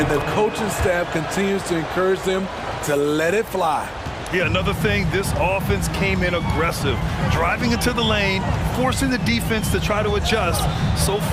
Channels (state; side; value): identical; both; correlation 1.00